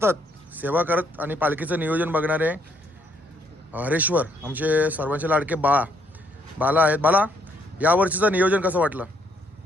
सेवा करत आणि पालखीचं नियोजन बघणारे हरेश्वर आमचे सर्वांचे लाडके बाला आहेत. बाला, यावर्षीचं नियोजन कसं वाटलं?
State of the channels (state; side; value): normal; both; correlation 0.70